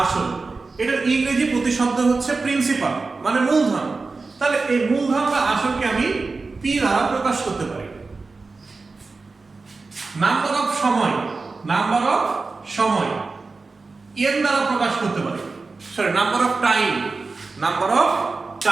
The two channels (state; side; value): quieter; left; 4.0 dB